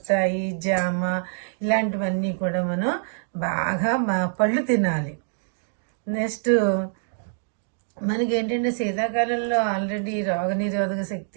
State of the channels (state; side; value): silent; left; digital silence